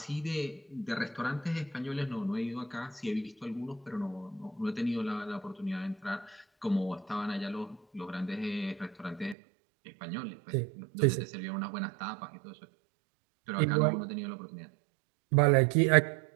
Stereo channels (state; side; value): drops out; left; at 9.3 s